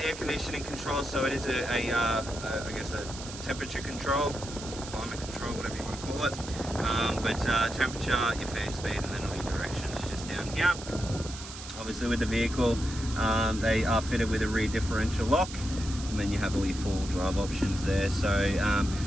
conditioning control, so it is I guess a temperature control, or climate control, whatever you want to call it. But temperature, your fan speed, and then all your directions just down here. Obviously with the vehicle, they are fitted with a rear differential lock, and then you have all your four-wheel drive options there. So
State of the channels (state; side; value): noise; right; hiss, 12 dB below the sound